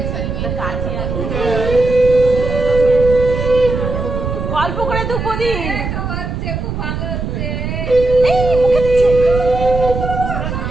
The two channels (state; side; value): noise; right; rumble, 4 dB below the sound